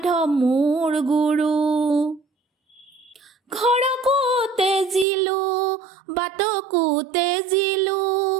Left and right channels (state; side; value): drops out; left; at 5.1 s